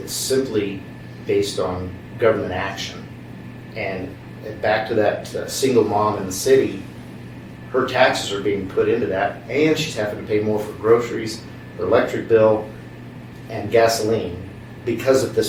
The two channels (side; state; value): both; identical; correlation 1.00